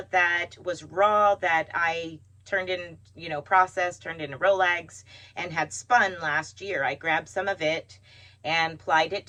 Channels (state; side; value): identical; both; correlation 1.00